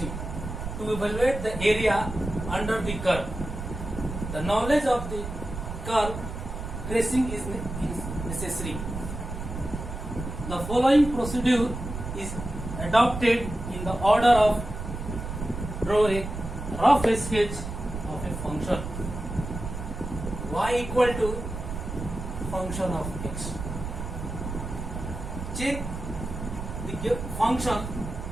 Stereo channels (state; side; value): noise; right; rumble, 7 dB below the sound